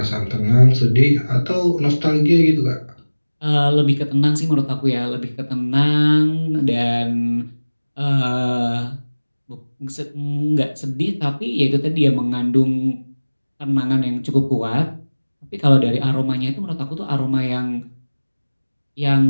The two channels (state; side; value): inverted; both; correlation -1.00